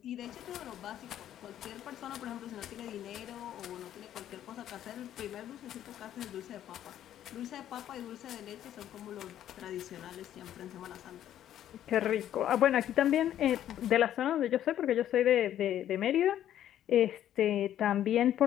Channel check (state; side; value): quieter; right; 11.3 dB